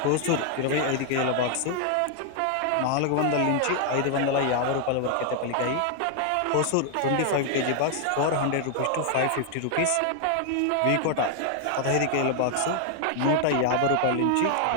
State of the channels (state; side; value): different; both; correlation 0.00